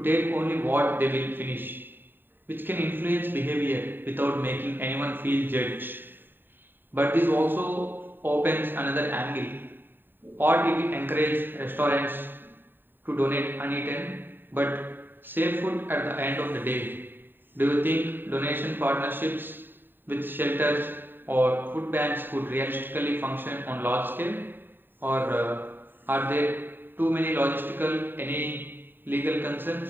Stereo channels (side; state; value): left; late; 0.094 ms